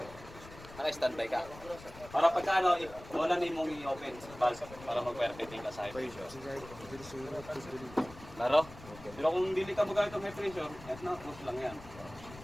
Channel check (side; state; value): left; noise; rumble, 17 dB below the sound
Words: Naka-standby ka. Para pagka ano, wala na mong i-open valve para mag-perfecting ka sa high pressure. Laro? Pero kung dili ka magamit ng high pressure, yan na, push lang yan.